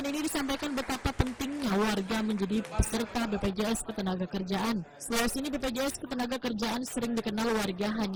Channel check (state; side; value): identical; both; correlation 1.00